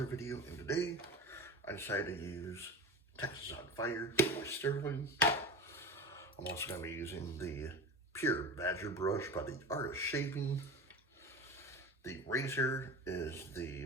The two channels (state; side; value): normal; both; correlation 0.30